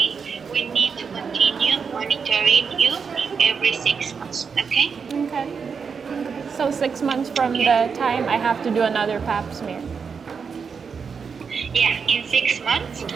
we need to continue monitoring you every 6 months. Okay. Okay. So 6 months from the time I have to do another pap smear. Yeah, in 6 months,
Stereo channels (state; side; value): quieter; left; 5.9 dB